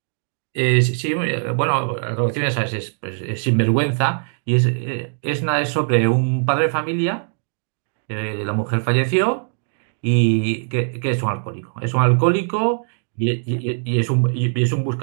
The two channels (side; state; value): left; silent; digital silence